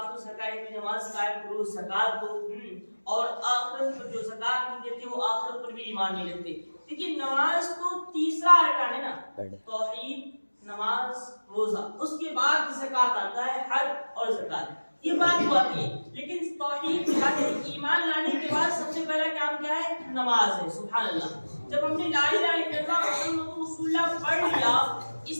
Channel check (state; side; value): inverted; both; correlation -1.00